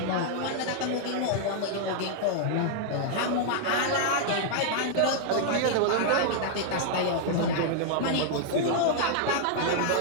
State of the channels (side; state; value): both; different; correlation -0.01